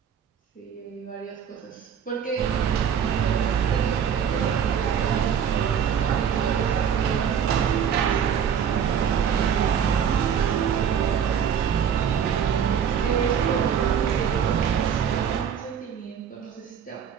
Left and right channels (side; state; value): left; quieter; 8.0 dB